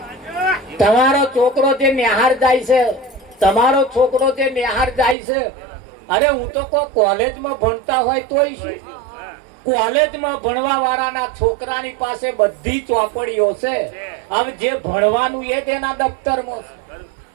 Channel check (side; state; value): left; drops out; at 5.2 s